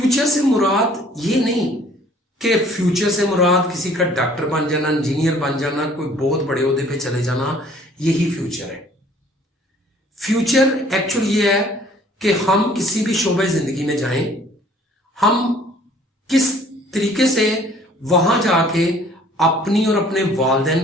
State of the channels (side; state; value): both; normal; correlation 0.56